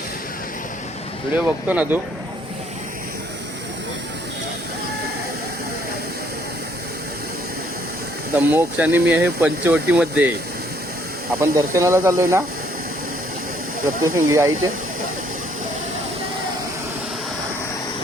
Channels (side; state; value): both; normal; correlation 0.65